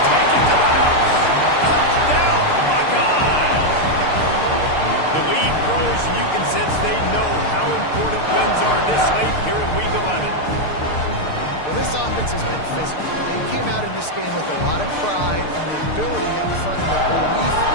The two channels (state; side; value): late; right; 6.6 ms